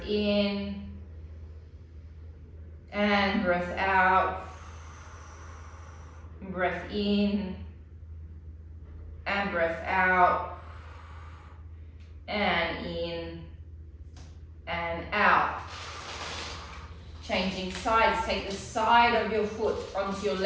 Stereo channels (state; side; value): identical; both; correlation 1.00